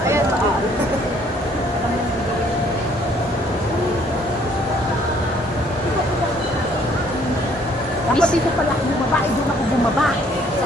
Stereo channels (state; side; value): normal; both; correlation 0.62